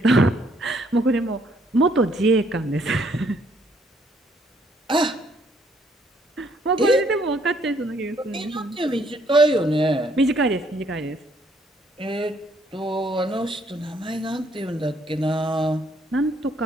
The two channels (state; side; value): normal; both; correlation 0.67